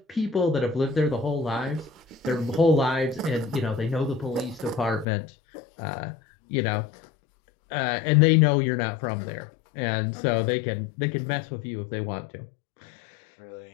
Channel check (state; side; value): drops out; right; at 5.1 s